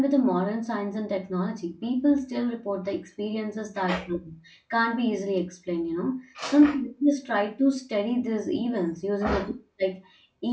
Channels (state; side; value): identical; both; correlation 1.00